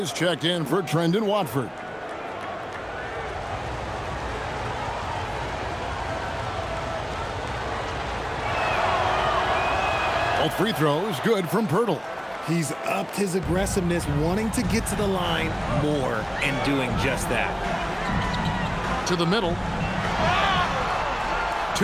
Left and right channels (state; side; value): identical; both; correlation 1.00